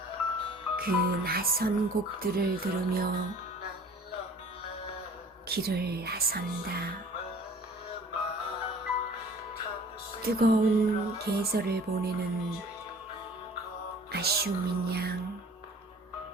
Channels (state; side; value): normal; both; correlation 0.49